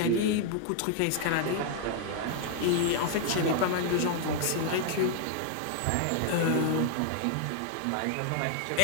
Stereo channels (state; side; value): different; both; correlation 0.00